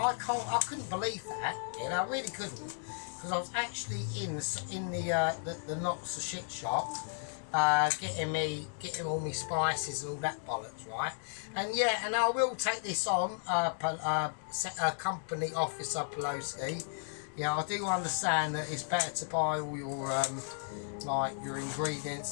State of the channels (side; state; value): right; silent; digital silence